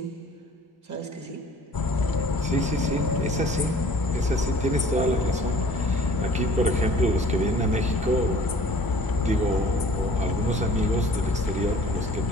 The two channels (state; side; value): normal; both; correlation 0.51